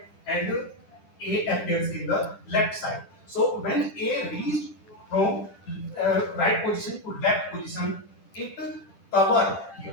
and A appears in the left side. So when A reached from right position to left position, it cover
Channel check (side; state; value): right; late; 10 ms